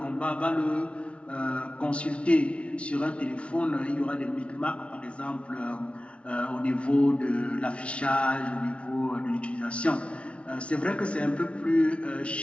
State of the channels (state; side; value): late; right; 0.061 ms